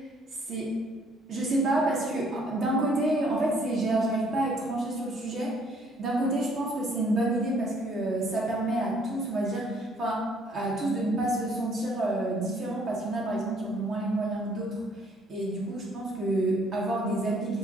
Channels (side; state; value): both; normal; correlation 0.63